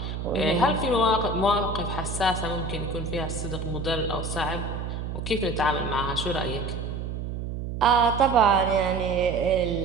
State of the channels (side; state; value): right; noise; hum, 5 dB below the sound